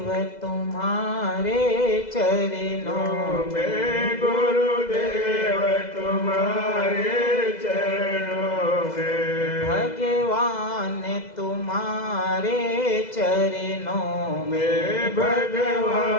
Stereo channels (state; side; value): late; right; 2.0 ms